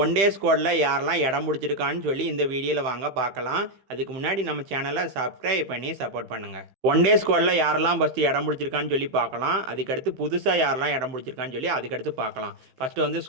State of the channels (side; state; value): left; late; 15 ms